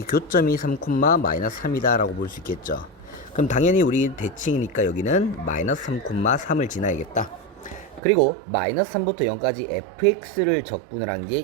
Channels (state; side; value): drops out; left; at 8.0 s